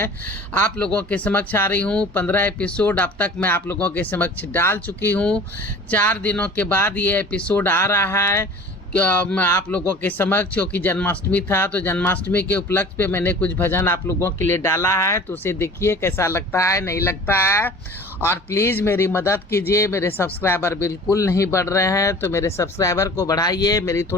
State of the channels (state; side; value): normal; both; correlation 0.43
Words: आप लोगों के समक्ष आ रही हूँ। 15 एपिसोड अब तक मैं आप लोगों के समक्ष डाल चुकी हूँ। 4 दिनों के बाद ये एपिसोड आ रहा है मैं आप लोगों के समक्ष, क्योंकि जन्माष्टमी था तो जन्माष्टमी के उपलक्ष्य पे मैंने कुछ भजन आप लोगों के लिए डाला है। तो उसे देखिए कैसा लगता है, नहीं लगता है। और प्लीज़ मेरी मदद कीजिए। मेरे सब्सक्राइबर बिल्कुल नहीं बढ़ रहे हैं, तो मेरे सब्सक्राइबर को बढ़ाइए, मेरी